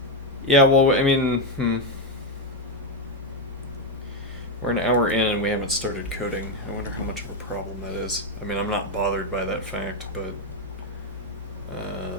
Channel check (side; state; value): both; normal; correlation 0.04